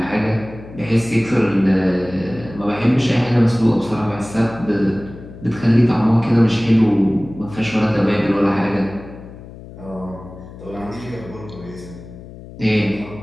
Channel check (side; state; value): left; noise; hum, 16 dB below the sound